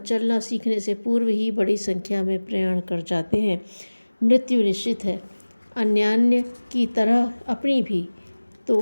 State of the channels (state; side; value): inverted; both; correlation -1.00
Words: सीखने से पूर्व ही बड़ी संख्या में प्रयाण कर जाते हैं। मृत्यु निश्चित है, अन्यान्य की तरह अपनी भी।